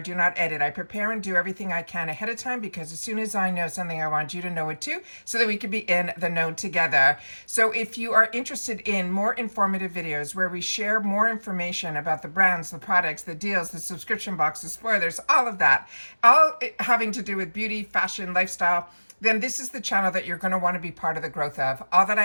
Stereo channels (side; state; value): both; inverted; correlation -1.00